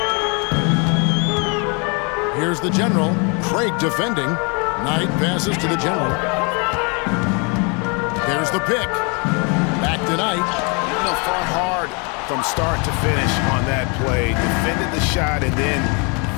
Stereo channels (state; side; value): quieter; right; 33.5 dB